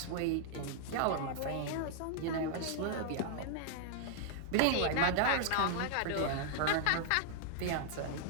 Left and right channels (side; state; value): both; different; correlation -0.01